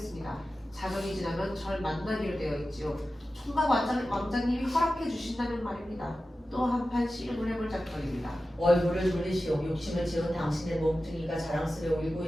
자정이 지나면 절 만나기로 되어 있지요. 총각 왕자님이 허락해 주신다는 말입니다. 또 한판 씨름을 해볼 작정입니다. 얼굴을 돌리시오. 욕심을 지은 당신의 몸뚱이가 자랑스레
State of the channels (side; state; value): both; normal; correlation 0.94